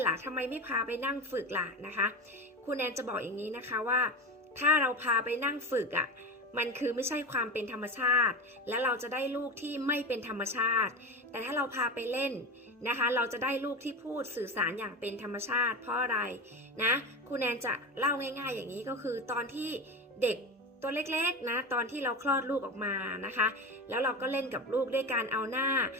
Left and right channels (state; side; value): normal; both; correlation 0.23